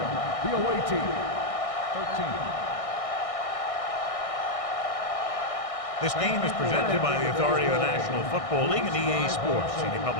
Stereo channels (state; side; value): late; right; 1.6 ms